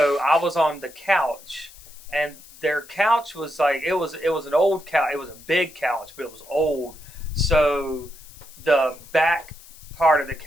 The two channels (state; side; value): noise; left; hiss, 21 dB below the sound